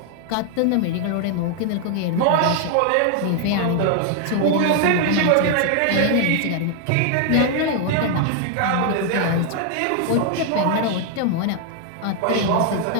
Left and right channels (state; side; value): different; both; correlation 0.00